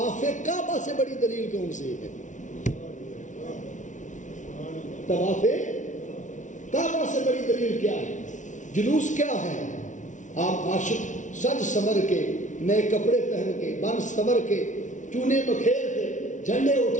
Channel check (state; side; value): late; right; 0.37 ms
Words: کعبہ سے بڑی دلیل کون سی ہے؟ طواف کعبہ سے بڑی دلیل کیا ہے؟ جلوس کیا ہے؟ آپ عاشق سج سمر کے، نئے کپڑے پہن کے، بن سمر کے، چونے بکھیر کے، جھنڈے